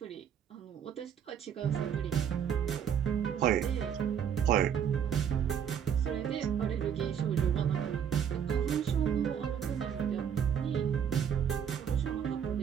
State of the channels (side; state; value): left; quieter; 8.3 dB